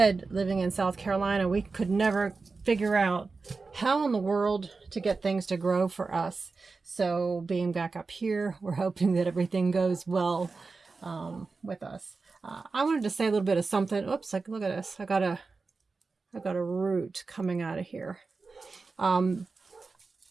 living in South Carolina, we could never figure out how in the world to get things to grow for us. So being back up here, we're hoping that everything goes well with us. I wanted to say a little bit of something. Oops, like look at this. I got a root coming out of here.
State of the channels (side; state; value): left; quieter; 4.2 dB